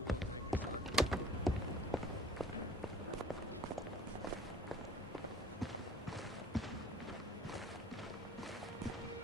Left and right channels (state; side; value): normal; both; correlation 0.51